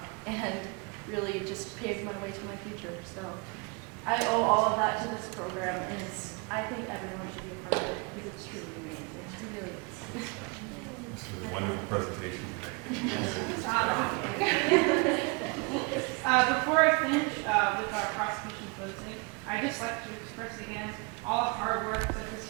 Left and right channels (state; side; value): quieter; left; 31.1 dB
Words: and really just paved my way to my future. So I owe all of that to this program, and I think everyone should be a part of it because it's truly amazing. It really is. This is a wonderful presentation tonight. Before I finish with our prosecution closing, I'd just like to express again all the hard work that this